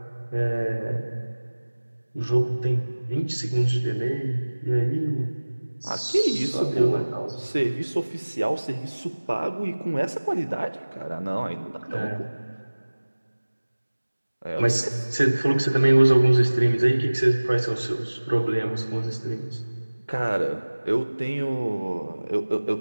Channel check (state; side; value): inverted; both; correlation -1.00